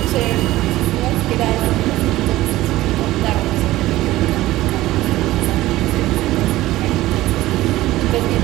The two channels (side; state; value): left; quieter; 16.6 dB